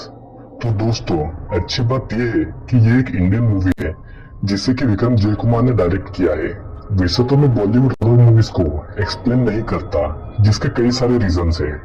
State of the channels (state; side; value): identical; both; correlation 1.00